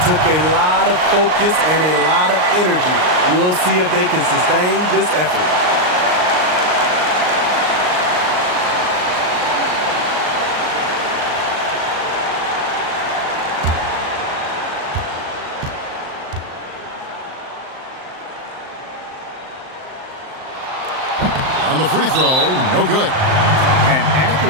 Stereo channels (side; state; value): left; late; 39 ms